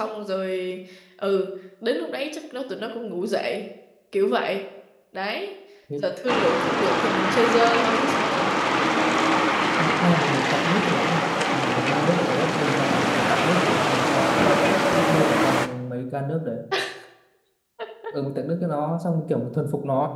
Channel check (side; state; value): both; identical; correlation 1.00